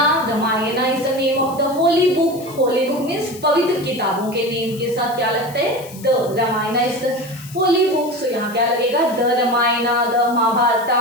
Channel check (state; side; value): noise; left; hiss, 19 dB below the sound